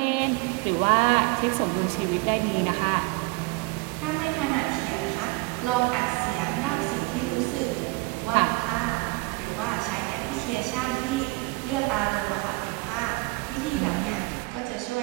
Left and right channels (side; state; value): left; quieter; 25.2 dB